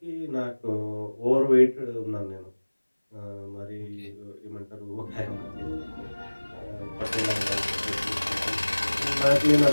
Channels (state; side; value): inverted; both; correlation -1.00